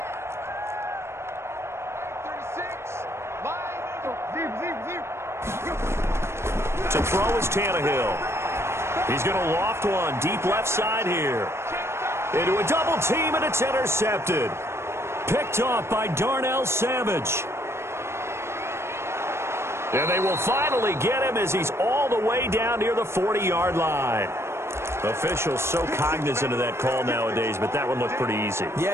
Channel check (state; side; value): late; left; 0.13 ms